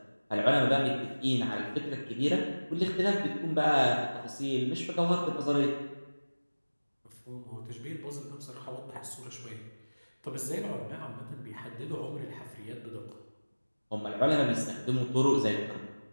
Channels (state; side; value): inverted; both; correlation -1.00